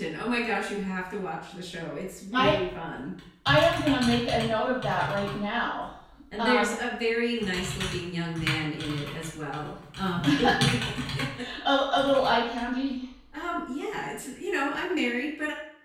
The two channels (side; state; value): both; identical; correlation 1.00